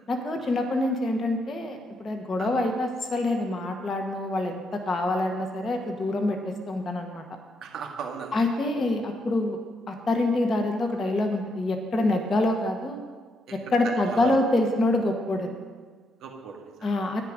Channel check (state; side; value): normal; both; correlation 0.78